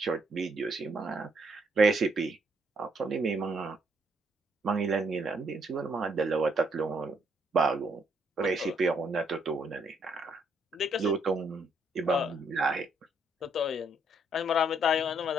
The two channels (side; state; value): both; normal; correlation 0.71